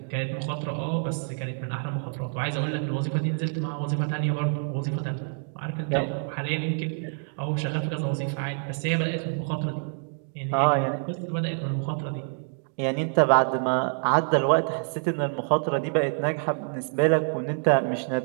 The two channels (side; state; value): left; silent; 58 dB below the other